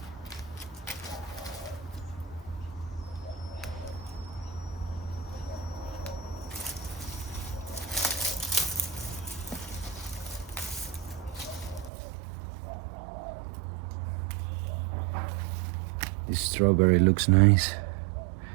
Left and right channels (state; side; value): drops out; left; at 11.9 s